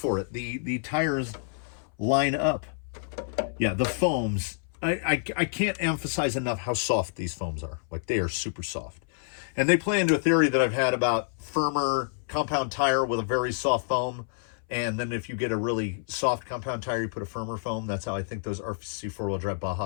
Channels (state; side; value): silent; right; 59 dB below the other